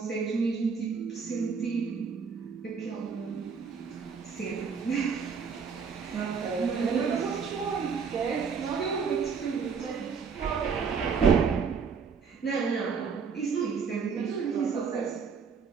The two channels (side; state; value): left; quieter; 5.8 dB